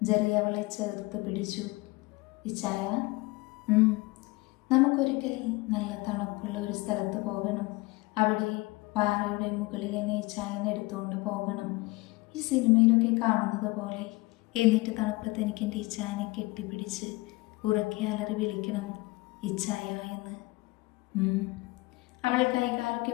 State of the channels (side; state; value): right; quieter; 22.7 dB